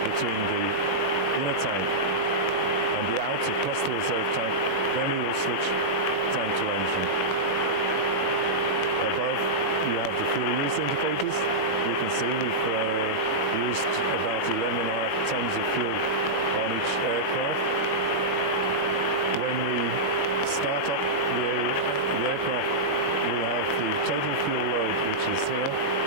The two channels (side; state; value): right; late; 21 ms